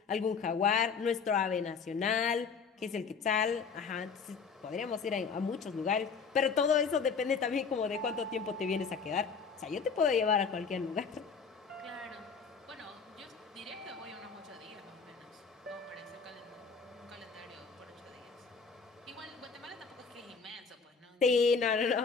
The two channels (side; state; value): right; quieter; 5.5 dB